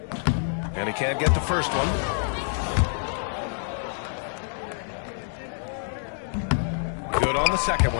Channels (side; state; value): right; silent; 59 dB below the other